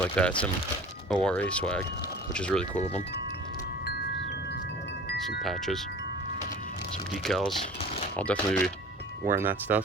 that, some ORA swag, which is really cool of them. Some patches, some decals. I'll definitely be wearing that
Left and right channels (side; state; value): both; normal; correlation 0.42